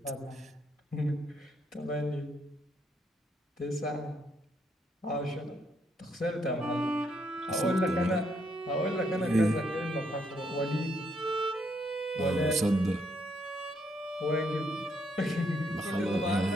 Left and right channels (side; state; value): both; normal; correlation 0.74